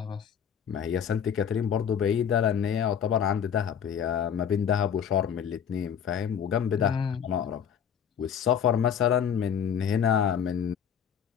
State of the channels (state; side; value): quieter; right; 8.2 dB